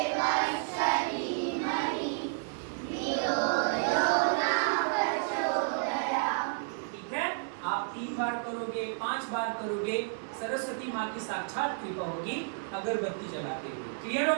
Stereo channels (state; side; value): silent; left; digital silence